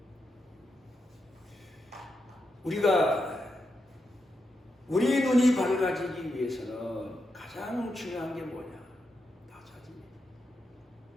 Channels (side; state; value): both; normal; correlation 0.85